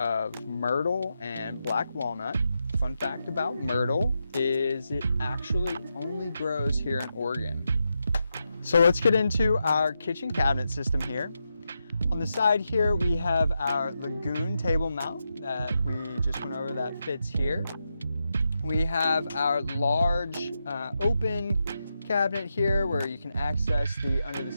myrtle and black walnut. Fun fact about myrtle is it actually only grows here in Oregon. So let's get into our kitchen cabinet system here. On the side here, we have our Lagoon table mount that we just went over that fits here. We have our large open cabinet here where you can access the under the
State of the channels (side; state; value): both; inverted; correlation -0.86